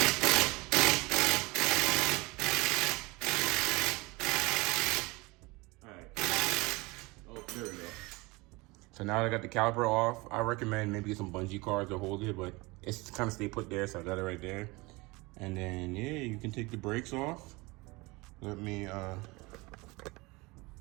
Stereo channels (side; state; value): left; quieter; 24.0 dB